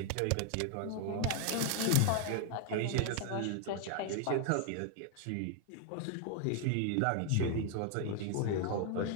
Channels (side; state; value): both; different; correlation 0.00